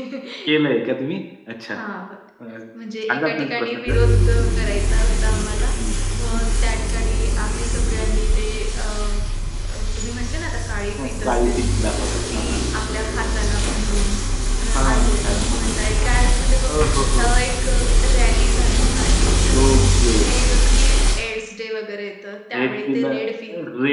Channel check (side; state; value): both; identical; correlation 1.00